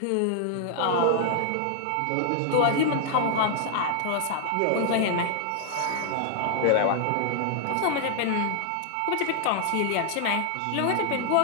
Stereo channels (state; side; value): different; both; correlation 0.00